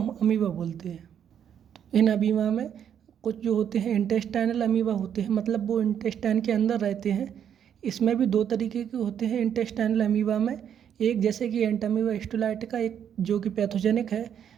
अमीबा बोलते हैं। तो इन अमीबा में कुछ जो होते हैं इंटेस्टाइनल अमीबा होते हैं, मतलब वो इंटेस्टाइन के अंदर रहते हैं। इसमें भी दो तरीके के होते हैं इंटेस्टाइनल अमीबा में, एक जैसे कि एंटमीबा हिस्टोलाइटिका, एक जो कि पैथोजेनिक है,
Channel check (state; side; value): quieter; left; 8.9 dB